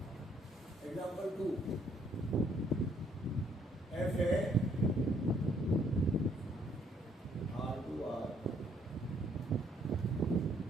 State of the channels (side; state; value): both; normal; correlation 0.67